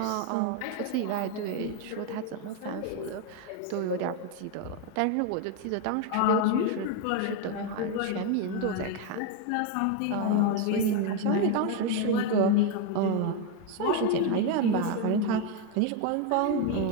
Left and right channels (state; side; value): different; both; correlation 0.02